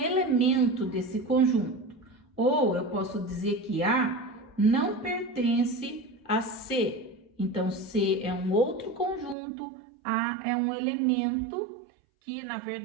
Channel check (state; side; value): drops out; left; at 9.3 s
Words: desse conjunto. Ou eu posso dizer que A não pertence a C. Então, C é um outro conjunto, A é um elemento que, na